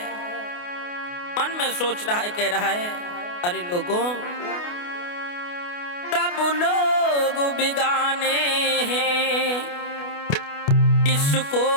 मन में सोच रहा है, कह रहा है, अरे लोगों सब लोग बिगाने हैं, इसको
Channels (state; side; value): late; right; 28 ms